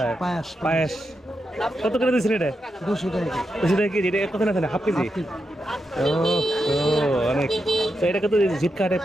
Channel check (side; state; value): both; normal; correlation 0.86